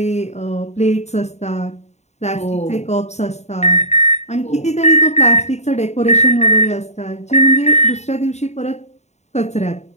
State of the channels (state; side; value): late; right; 0.32 ms